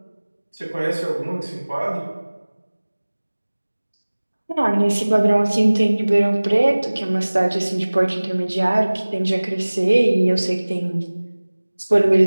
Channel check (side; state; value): both; inverted; correlation -1.00